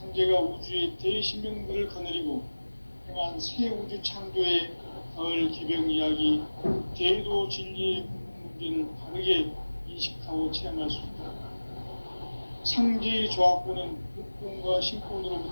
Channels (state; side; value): inverted; both; correlation -1.00